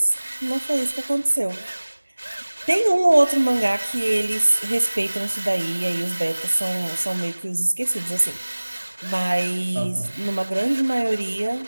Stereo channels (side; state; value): both; inverted; correlation -1.00